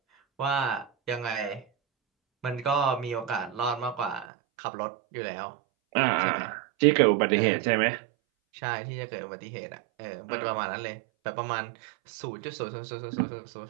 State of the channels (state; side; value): drops out; left; at 4.2 s